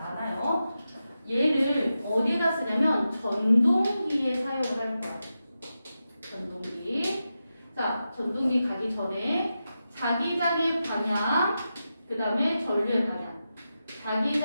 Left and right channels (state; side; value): inverted; both; correlation -0.90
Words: 얘를 어디다 쓰냐면 전동기에 사용을 할 거야. 전동기. 자, 전동기 가기 전에 자기장의 방향, 그 다음에 전류의 방향.